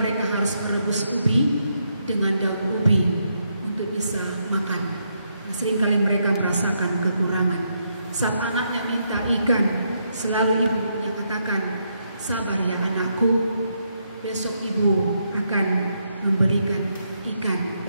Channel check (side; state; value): both; inverted; correlation -0.78